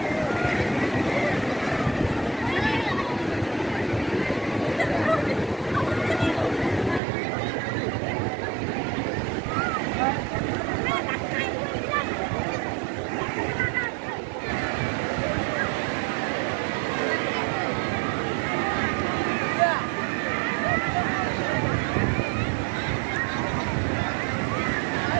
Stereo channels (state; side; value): drops out; left; at 7.0 s